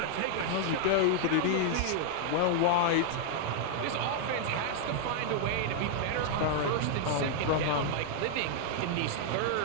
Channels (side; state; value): both; different; correlation 0.00